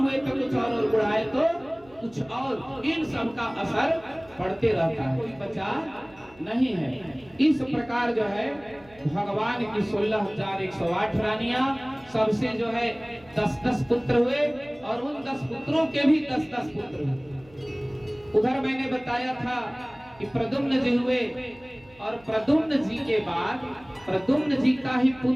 तो कुछ और बुढ़ाए तो कुछ और, इन सब का असर पड़ते रहता है, कोई बचा नहीं है। इस प्रकार जो है भगवान की 16,108 रानियां, सबसे जो है 10-10 पुत्र हुए और उन 10 पुत्रों के भी 10-10 पुत्र हुए। उधर मैंने बताया था कि प्रद्युम्न जी हुए और प्रद्युम्न जी के बाद प्रद्युम्न जी का ही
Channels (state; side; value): noise; right; hum, 26 dB below the sound